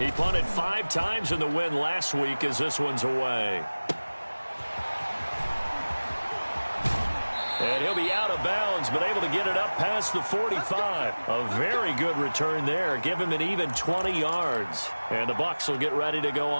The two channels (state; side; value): inverted; both; correlation -1.00